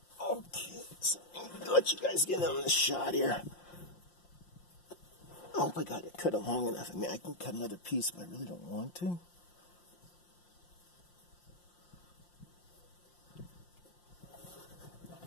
Okay, so let you guys get on the shot here. I hope I got it cut it long enough. I mean, I can cut another piece, but I really don't want to.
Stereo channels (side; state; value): right; late; 5.7 ms